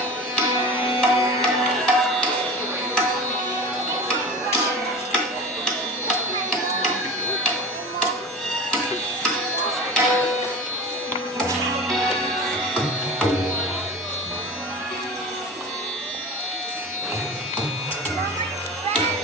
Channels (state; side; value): normal; both; correlation 0.34